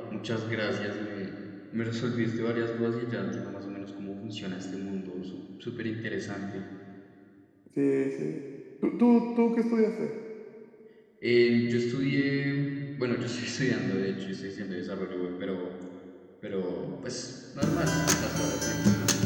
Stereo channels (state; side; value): identical; both; correlation 1.00